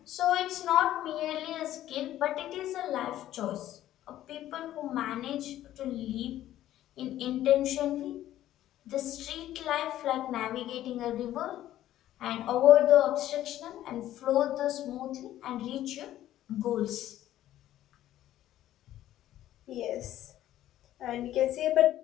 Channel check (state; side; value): quieter; right; 13.1 dB